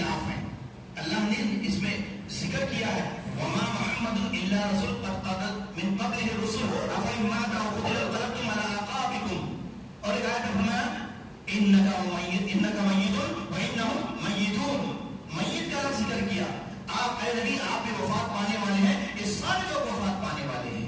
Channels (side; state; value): both; identical; correlation 1.00